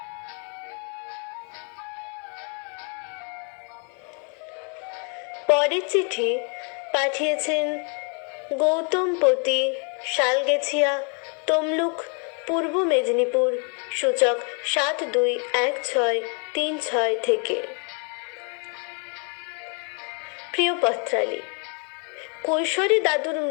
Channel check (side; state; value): right; quieter; 37.8 dB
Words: পরের চিঠি পাঠিয়েছেন গৌতমপতি, শালগেছিয়া, তমলুক, পূর্ব মেদিনীপুর, সূচক 721636 থেকে। প্রিয় পত্রালী, কৈশোরে দাদুর